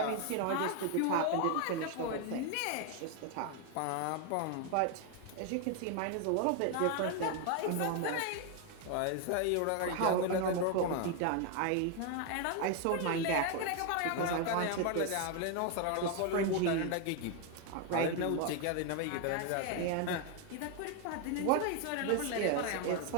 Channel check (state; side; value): different; both; correlation 0.01